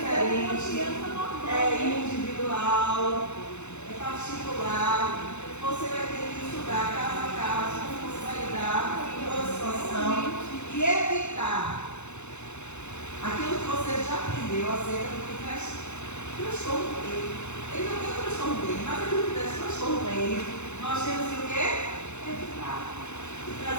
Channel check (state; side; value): late; right; 0.82 ms